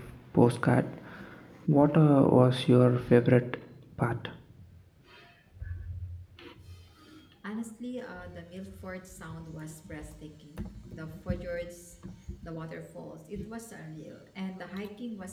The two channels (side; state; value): both; identical; correlation 1.00